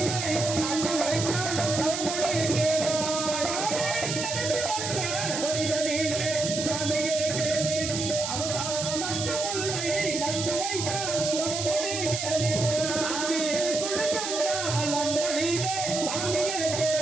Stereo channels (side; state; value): right; noise; hiss, 3 dB below the sound